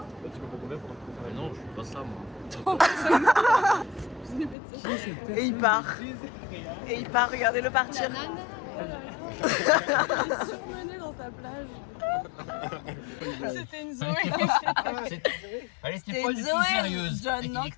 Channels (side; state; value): right; drops out; at 4.5 s